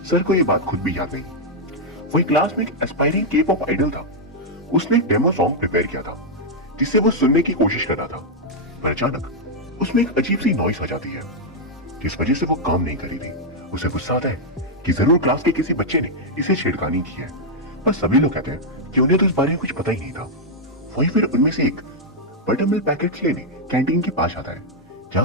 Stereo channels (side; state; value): both; normal; correlation -0.03